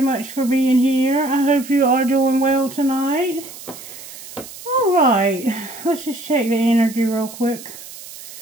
for being here. I hope you are doing well tonight. Alright, let's just check the energy real quick.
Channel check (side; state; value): right; noise; hiss, 15 dB below the sound